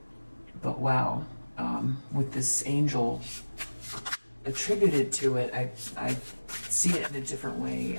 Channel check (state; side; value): inverted; both; correlation -1.00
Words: But wow, with this angel attributed to it, I see it in a different way.